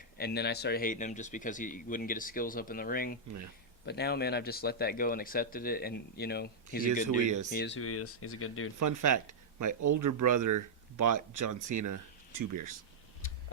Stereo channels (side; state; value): left; quieter; 3.2 dB